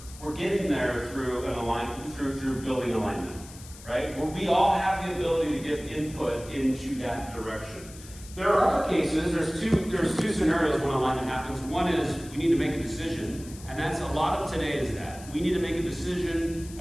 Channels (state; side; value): noise; left; hiss, 18 dB below the sound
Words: getting there through an alignment, through building alignment, right? Where we all have the ability to give input into that direction. There are other cases, there's two scenarios when alignment happens. One is we need to make a decision, and that's a lot of today is that. We need to make a decision